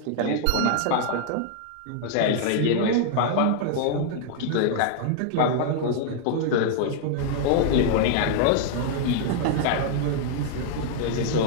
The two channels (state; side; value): different; both; correlation -0.01